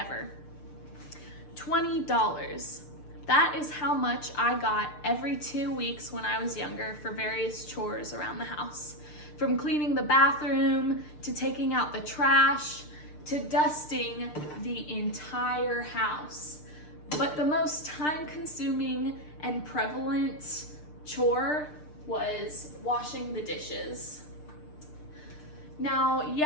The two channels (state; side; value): late; right; 6.7 ms